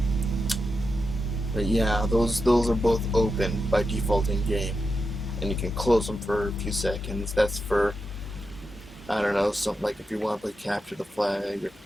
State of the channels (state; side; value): normal; both; correlation 0.88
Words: But yeah, those are both open by default in game, and you can close them for a few seconds. That's for, I don't know, something like if you want to play capture the flag, or